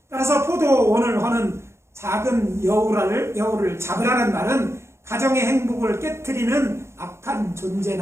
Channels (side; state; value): left; late; 0.13 ms